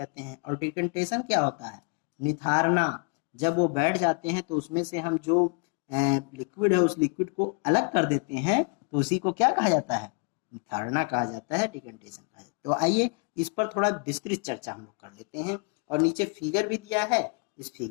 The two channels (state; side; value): quieter; right; 38.3 dB